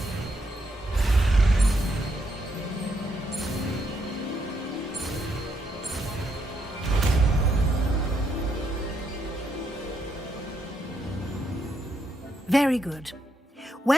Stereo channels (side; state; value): both; normal; correlation 0.78